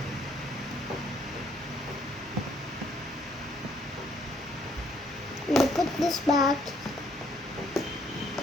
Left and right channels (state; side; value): normal; both; correlation 0.66